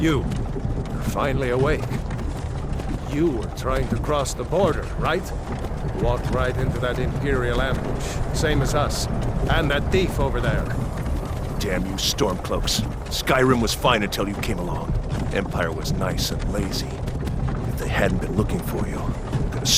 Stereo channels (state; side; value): identical; both; correlation 1.00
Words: finally awake. You were trying to cross the border, right? Walked right into that Imperial ambush, same as us. And that thief over there. Damn you Stormcloaks. Skyrim was fine until you came along. Empire was nice and lazy. If they hadn't been looking for you, could have